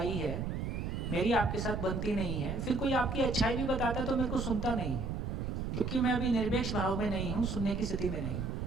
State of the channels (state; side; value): noise; right; rumble, 3 dB below the sound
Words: है, मेरी आपके साथ बनती नहीं है, फिर कोई आपकी अच्छाई भी बताता है तो मेरे को सुनता नहीं है, क्योंकि मैं अभी निरपेक्ष भाव में नहीं हूं, सुनने की स्थिति में नहीं हूं।